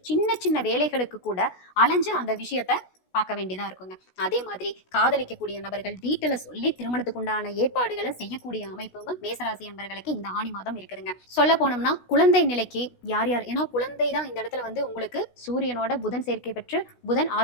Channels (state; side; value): late; right; 16 ms